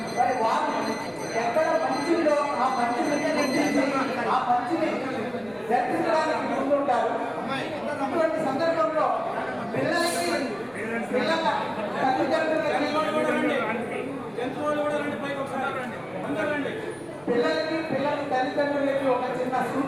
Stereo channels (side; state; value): right; noise; rumble, 27 dB below the sound